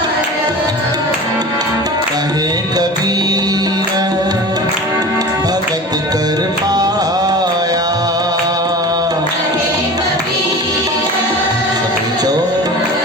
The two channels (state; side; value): normal; both; correlation 0.35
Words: कहे कबीर भगत कर पाया सभी चो